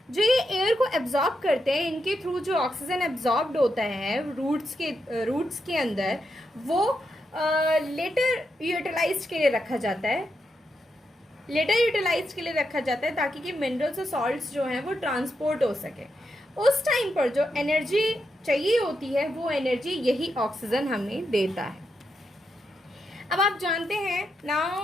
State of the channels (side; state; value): both; normal; correlation 0.84